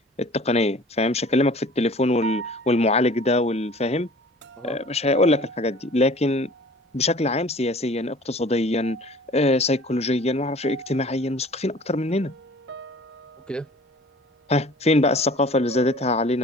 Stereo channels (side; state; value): both; normal; correlation 0.47